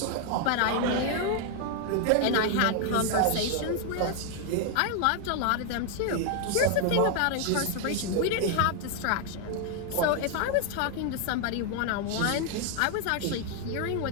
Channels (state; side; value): different; both; correlation 0.00